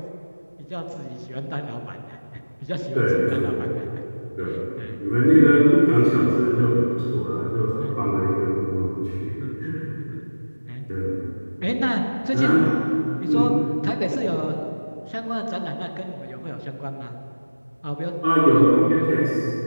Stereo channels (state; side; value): inverted; both; correlation -1.00